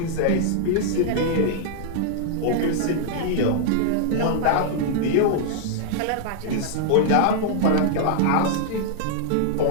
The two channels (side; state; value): both; different; correlation -0.01